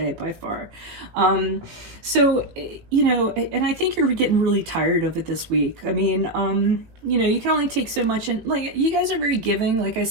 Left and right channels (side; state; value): left; late; 18 ms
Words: by far. So, you know, and I think you're getting really tired of it this week. I mean, you know, you can only take so much, and like, you guys are very giving. Like I